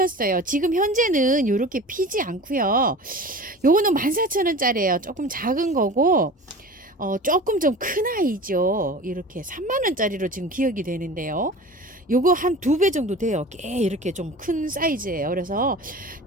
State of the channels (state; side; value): normal; both; correlation 0.37